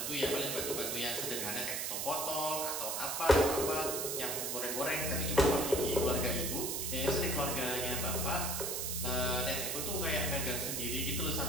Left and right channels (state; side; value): noise; right; hiss, 1 dB below the sound